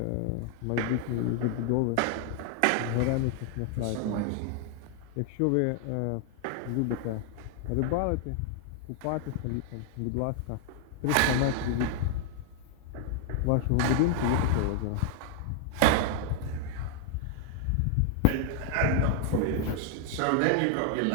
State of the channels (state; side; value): different; both; correlation 0.00